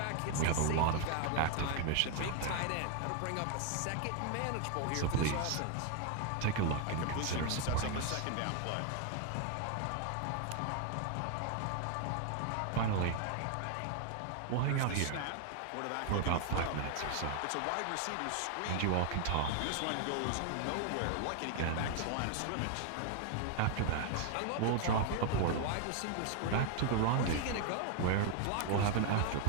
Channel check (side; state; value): both; different; correlation 0.00